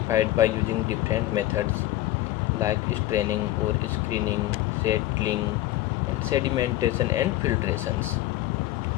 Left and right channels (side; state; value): right; quieter; 15.5 dB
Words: by using different methods like straining or screening, settling, and sedimentation and filtrations.